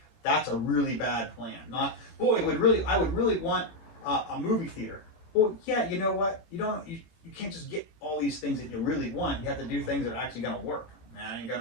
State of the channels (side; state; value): right; late; 18 ms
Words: that's a really bad plan. Not, boy, I would really want a movie theater. Well, yeah, you know what? You can't just get all these things that you really want. You have to do things that are actually going to work. Man, ain't going